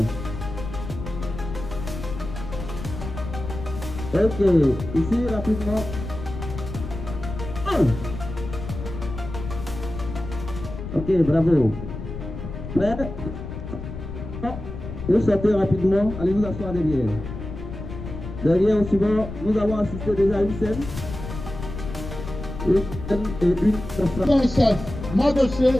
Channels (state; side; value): noise; left; rumble, 9 dB below the sound